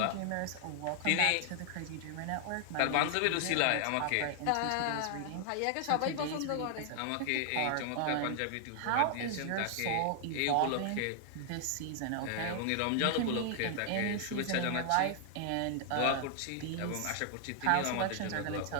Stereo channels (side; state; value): both; different; correlation 0.00